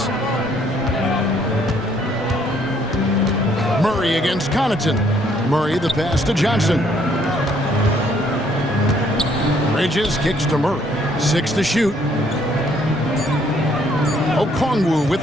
Murray against Connaughton. Murray the pass to Johnson. Bridges kicks to Murray. 6 to shoot. Okongwu with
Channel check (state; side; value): normal; both; correlation 0.66